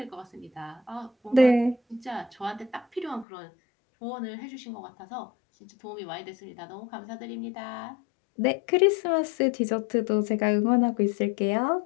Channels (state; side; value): drops out; right; at 3.2 s